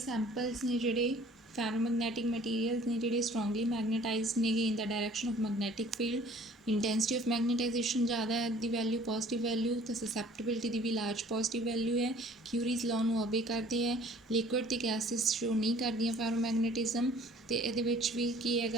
ਨੇ ਜਿਹੜੇ ਪੈਰਾਮੈਗਨੈਟਿਕ ਮਟੀਰੀਅਲਸ ਨੇ ਜਿਹੜੇ ਸਟਰੋਂਗਲੀ ਮੈਗਨੇਟਾਈਜ਼ਡ ਨੇਗੇ in the direction of magnetic field. Intensity of magnetization ਜ਼ਿਆਦਾ ਹੈ ਦੀ ਵੈਲਿਊ, ਪੋਜ਼ੀਟਿਵ ਵੈਲਿਊ, ਤਾਂ ਸਸੈਪਟੇਬਿਲਿਟੀ ਦੀ ਵੀ ਲਾਰਜ ਪੋਜ਼ੀਟਿਵ ਵੈਲਿਊ ਹੈ। ਕਿਊਰੀਜ਼ ਲਾਅ ਨੂੰ ਓਬੇ ਕਰਦੇ ਹੈ। ਲਿਕੁਇਡ ਅਤੇ ਗੈਸਿਸ ਸ਼ੋ ਨਹੀਂ ਕਰਦੀਆਂ ਫੈਰੋਮੈਗਨੇਟਿਜ਼ਮ। ਅਤੇ ਇਹਦੇ ਵਿੱਚ ਵੀ ਕੀ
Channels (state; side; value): normal; both; correlation 0.53